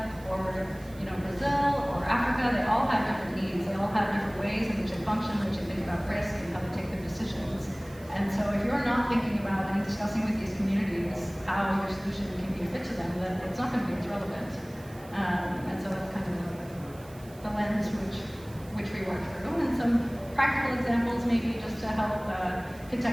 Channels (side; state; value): right; noise; hiss, 23 dB below the sound